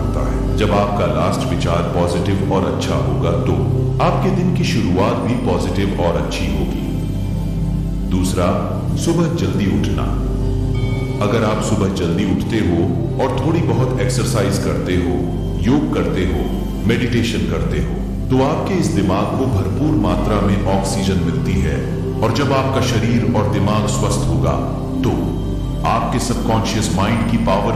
है। जब आपका लास्ट विचार पॉजिटिव और अच्छा होगा तो आपके दिन की शुरुआत भी पॉजिटिव और अच्छी होगी। दूसरा, सुबह जल्दी उठना। अगर आप सुबह जल्दी उठते हो और थोड़ी बहुत एक्सरसाइज करते हो, योग करते हो, मेडिटेशन करते हो, तो आपके इस दिमाग को भरपूर मात्रा में ऑक्सीजन मिलती है। और जब आपका शरीर और दिमाग स्वस्थ होगा तो आपके सबकॉन्शियस माइंड की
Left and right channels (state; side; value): identical; both; correlation 1.00